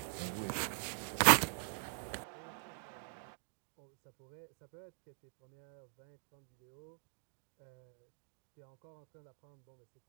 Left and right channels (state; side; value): silent; left; digital silence